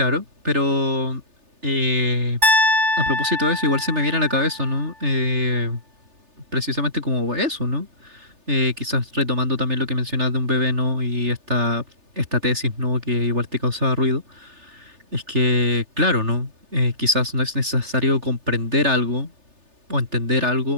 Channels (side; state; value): left; late; 3.3 ms